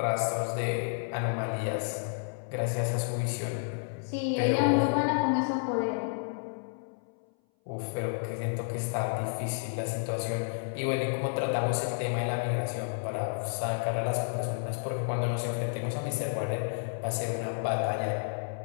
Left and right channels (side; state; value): right; silent; 57 dB below the other